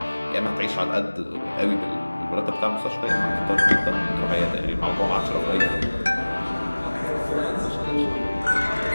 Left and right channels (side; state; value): both; inverted; correlation -1.00